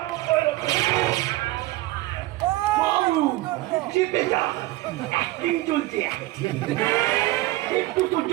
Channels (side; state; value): left; quieter; 18.4 dB